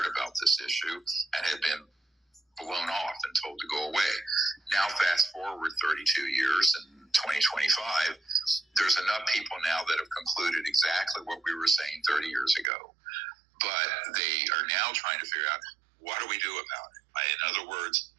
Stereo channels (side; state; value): left; drops out; at 12.7 s